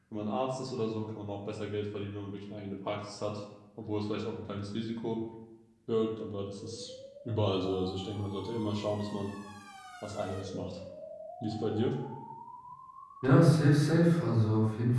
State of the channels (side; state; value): both; identical; correlation 1.00